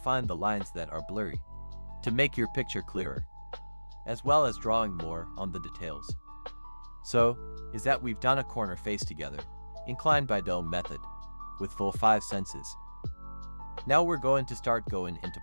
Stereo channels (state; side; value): inverted; both; correlation -1.00